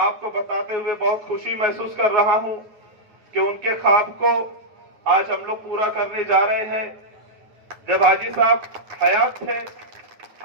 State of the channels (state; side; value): late; left; 9.5 ms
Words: बताते हुए बहुत खुशी महसूस कर रहा हूं कि उनके ख्वाब को आज हम लोग पूरा करने जा रहे हैं। जब हाजी साहब हयात थे,